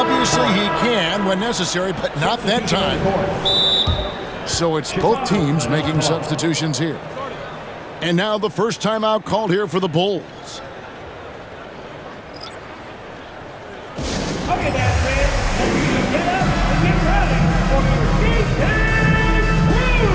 he can when necessary, but not that time. So it's both teams making substitutions here. And now the first timeout called here for the Bulls. Okay, that's it. Get up and get ready for your D-Town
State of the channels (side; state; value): both; identical; correlation 1.00